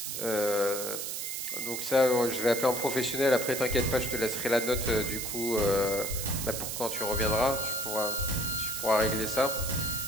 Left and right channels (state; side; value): noise; right; hiss, 4 dB below the sound